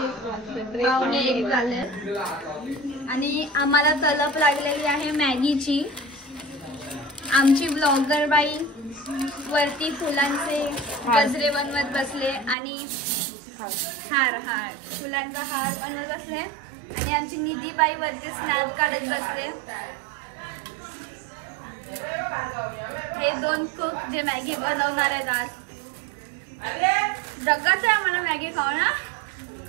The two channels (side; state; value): left; drops out; at 12.6 s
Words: पावणे 1 झाले आणि आम्हाला तलप लागलेली आहे मॅगीची. आमची ब्लॉगर बाई वरती फुलांचे गजरे बनवत बसले आणि हार फुलांचा हार बनवत बसले आणि आमची निधी बाई वरती स्नॅप काढत बसले. हे 2 कुक जे मॅगी बनवणार आहेत आज. जगाच आहे आम्हाला मॅगी खाऊ ना